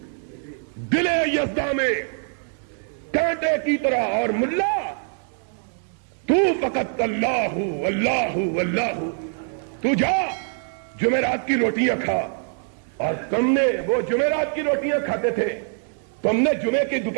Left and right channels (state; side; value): silent; left; 55 dB below the other